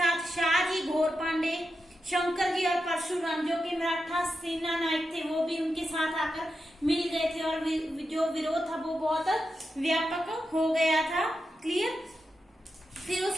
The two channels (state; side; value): normal; both; correlation 0.88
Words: शाहजी, घोर पांडे, शंकर जी और परशुराम जो कि मराठा सेना नायक थे, वो भी उनके साथ आकर मिल गए थे और जो विरोध था वो बहुत व्यापक हो गया था। क्लियर? फिर